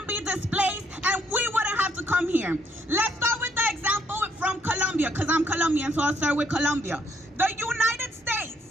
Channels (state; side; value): normal; both; correlation 0.71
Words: be displaced and we wouldn't have to come here. Let's start with the example from Colombia, because I'm Colombian, so I'll start with Colombia. The United